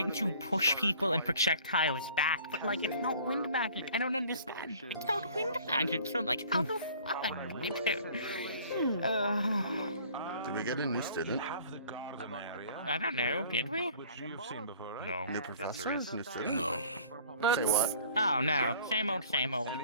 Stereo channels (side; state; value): both; inverted; correlation -0.51